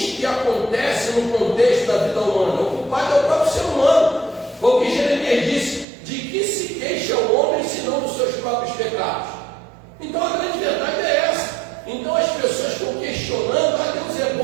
que acontecem no contexto da vida humana. O culpado é o próprio ser humano. Foi o que Jeremias disse: de que se queixa o homem senão dos seus próprios pecados? Então a grande verdade é essa. Então as pessoas estão questionando: Deus é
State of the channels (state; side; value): drops out; left; at 5.9 s